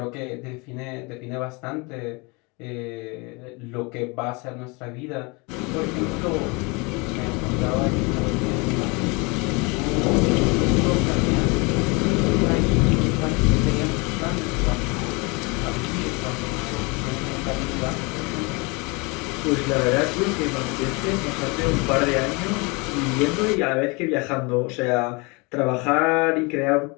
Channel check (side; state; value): right; quieter; 28.6 dB